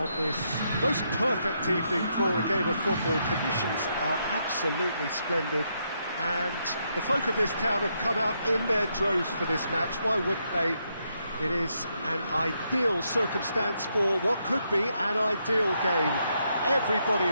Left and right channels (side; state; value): both; inverted; correlation -0.78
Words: this most perfect evening for a game of football. Conditions are absolutely splendid and the folk of this town have come out in their droves for this match. Why wouldn't they? It is an ideal circumstance for what could be an ideal game. Everybody